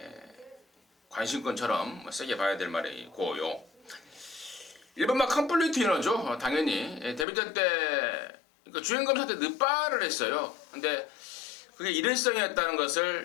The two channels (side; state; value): right; drops out; at 7.2 s